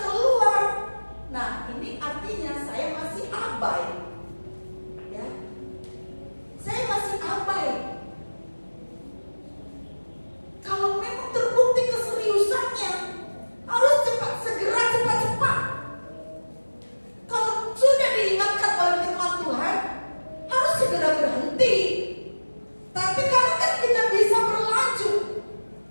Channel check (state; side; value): inverted; both; correlation -1.00